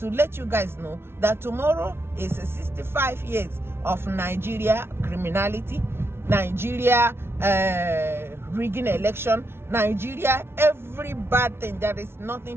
let you guys know that tomorrow is 65 years of Nigeria criminality, Nigeria rigging election, Nigeria every bad thing. There is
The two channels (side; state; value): left; late; 0.12 ms